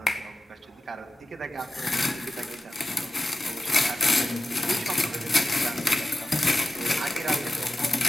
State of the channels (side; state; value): both; normal; correlation 0.93